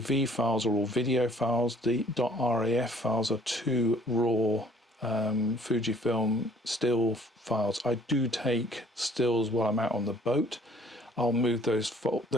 files are all video files. The .raf files are 2 raw Fujifilm still files. I do take stills while I'm out on the boat. I'll move those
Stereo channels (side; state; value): both; normal; correlation 0.58